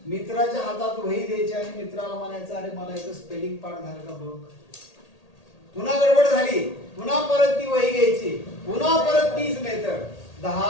मित्राच्या हातात वही द्यायची आणि मित्राला म्हणायचं अरे मला याचं स्पेलिंग पाठ झालं का बघ. पुन्हा गडबड झाली पुन्हा परत ती वही घ्यायची, पुन्हा परत तीच मेथड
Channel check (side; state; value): right; late; 1.8 ms